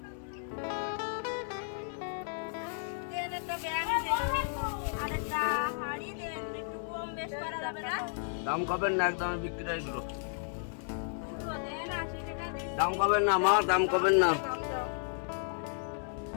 দাম কবেন না, একদম বিক্রি এগুলো দাম কবেন না, আমার দাম কবেন না।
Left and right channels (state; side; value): silent; right; 56 dB below the other